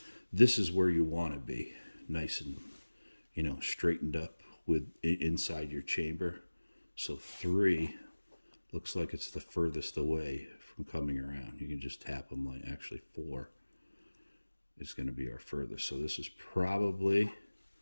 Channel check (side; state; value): both; inverted; correlation -1.00